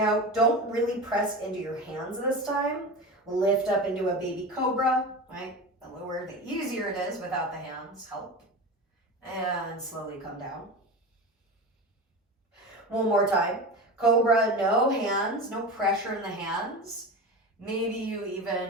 don't really press into your hands this time. Lift up into a baby cobra, right? The lower, the easier it is without the hands help. And slowly come down. One more time. Cobra, no hands, no pressure in the hands. Maybe you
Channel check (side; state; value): both; normal; correlation 0.27